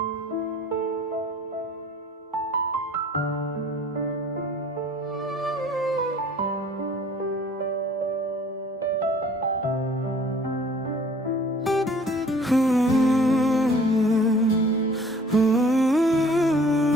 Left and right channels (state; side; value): normal; both; correlation 0.52